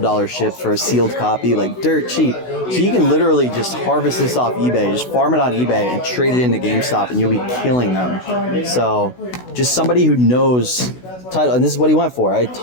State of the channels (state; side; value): late; right; 16 ms